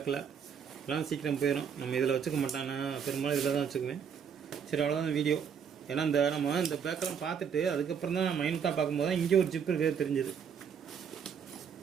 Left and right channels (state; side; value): quieter; left; 7.3 dB